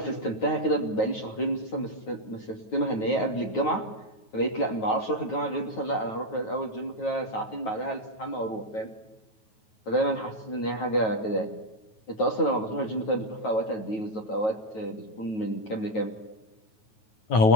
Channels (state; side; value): late; right; 9.2 ms